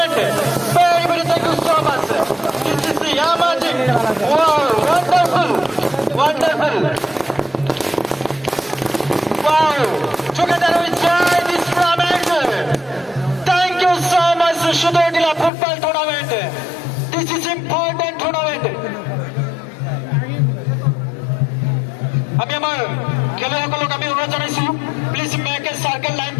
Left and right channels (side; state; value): right; drops out; at 15.5 s